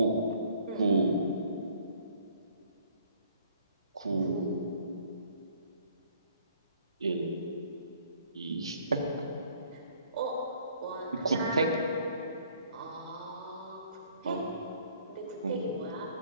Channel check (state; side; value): inverted; both; correlation -0.59